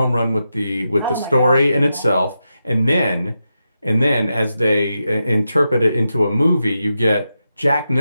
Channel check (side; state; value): both; inverted; correlation -0.87